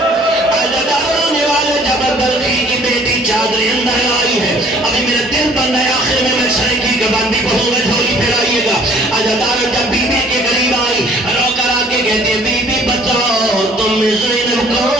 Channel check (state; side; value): normal; both; correlation 0.56